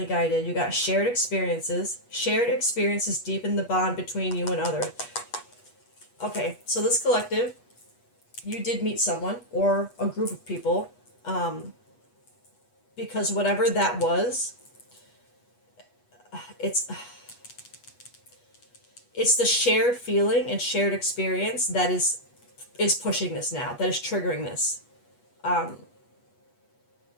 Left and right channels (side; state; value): right; late; 8.3 ms